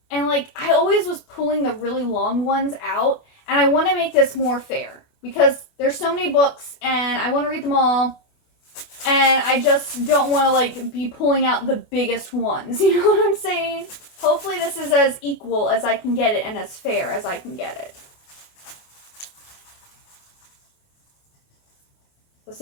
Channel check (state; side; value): late; right; 28 ms